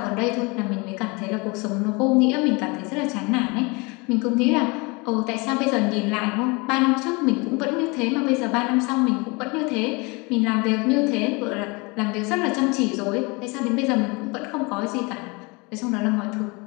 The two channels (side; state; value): right; quieter; 27.7 dB